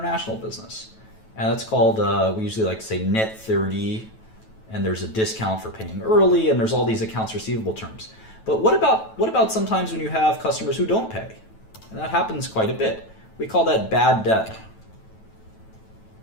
business. And that's called, we usually like to say net 30, and there's a discount for paying early, and there's all these accounts receivable terms. But what about sometimes when you have customers who don't pay? And that happens quite a bit. We call that bad debt.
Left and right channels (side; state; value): right; late; 9.2 ms